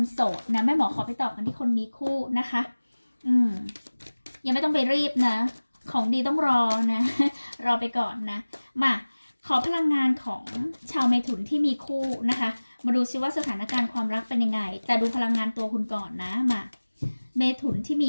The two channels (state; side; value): inverted; both; correlation -1.00